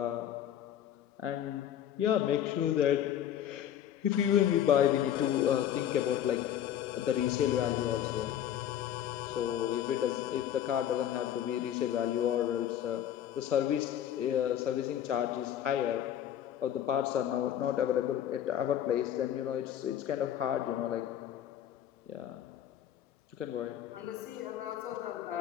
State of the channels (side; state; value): right; quieter; 10.5 dB